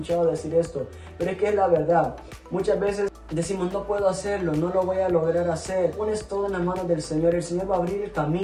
decir esto, pero es que es la verdad. Muchas veces decimos: no puedo hacerlo, no lo voy a lograr hacer. Pones todo en las manos del Señor, el Señor va a abrir el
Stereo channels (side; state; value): both; identical; correlation 1.00